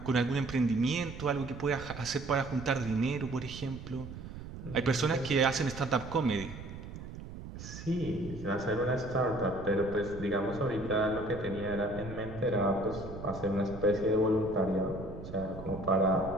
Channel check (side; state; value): right; noise; rumble, 11 dB below the sound